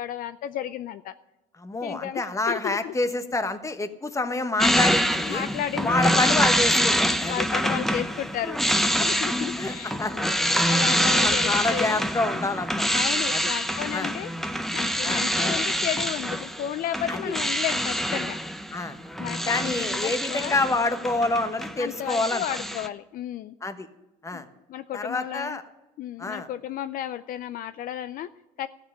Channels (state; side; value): normal; both; correlation 0.66